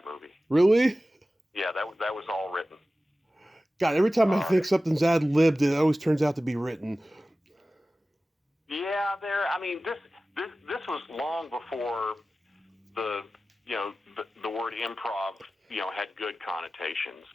movie. Really? Yeah, that was all written. God, every time I think something's ad libbed, it always turns out to be written. Yeah, this was long before the word improv had good connotations.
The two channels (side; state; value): both; normal; correlation 0.95